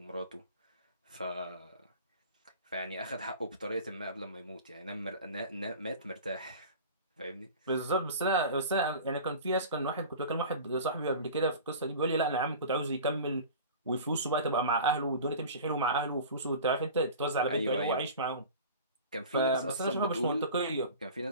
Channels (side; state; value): both; inverted; correlation -0.37